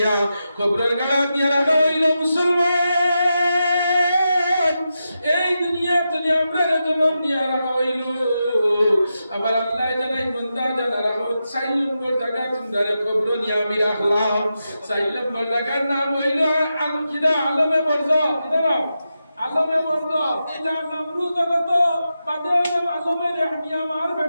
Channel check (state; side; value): inverted; both; correlation -0.89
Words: কবরের গাড়া নিয়ে রাখা হইল মুসলমান। এই দুনিয়া তনে আমরা জন্ম নিয়ে রাখা হইল। আবার আল্লাহ জানাই বান্দা জানা রাখো 4 নম্বর জায়গা তোমরা কবর নিয়ে আমি রাখলাম। 4 নম্বর জায়গার নাম হইল আলমে বরজ। কিনা নাম? আলমে বরজ। এটার নাম রু জগত, বাদে হইলাম আলমে রেহমিয়া মার